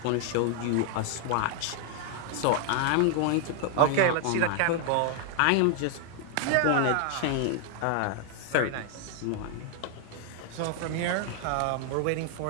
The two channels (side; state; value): both; different; correlation 0.00